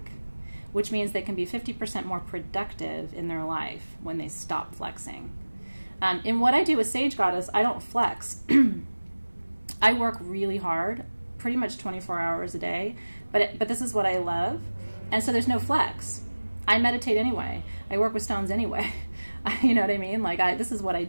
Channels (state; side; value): inverted; both; correlation -1.00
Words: which means they can be 50% more productive in their life when they stop flexing. In what I do with Sage Goddess, I don't flex. I work really hard, pretty much 24 hours a day, but this is what I love, and so there's no flex. I meditate anyway. I work with stones anyway. You know what I mean? This is what I